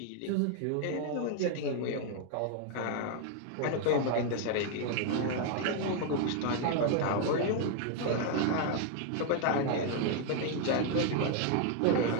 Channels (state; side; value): different; both; correlation 0.00